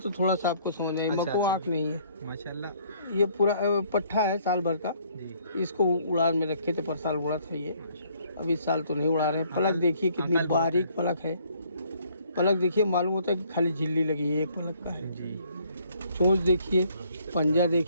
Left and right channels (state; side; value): inverted; both; correlation -0.63